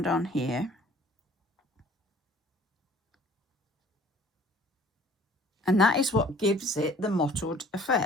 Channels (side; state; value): both; normal; correlation 0.52